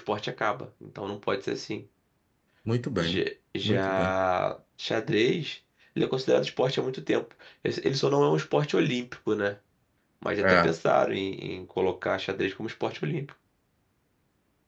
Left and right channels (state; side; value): identical; both; correlation 1.00